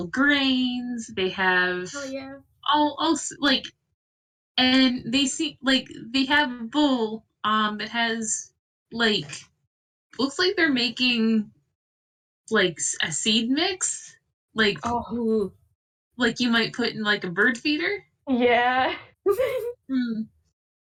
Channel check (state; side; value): identical; both; correlation 1.00